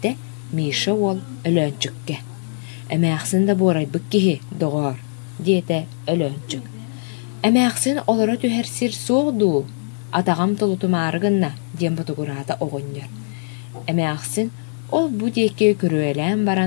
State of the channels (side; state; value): right; silent; 65 dB below the other